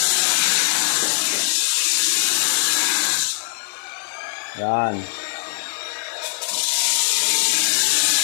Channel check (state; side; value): silent; right; 65 dB below the other